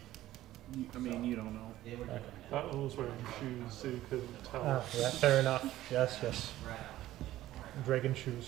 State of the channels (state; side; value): quieter; left; 14.7 dB